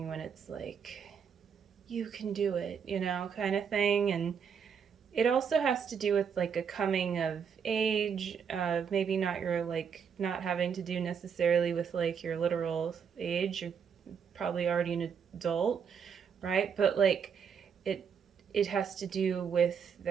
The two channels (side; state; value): left; quieter; 7.0 dB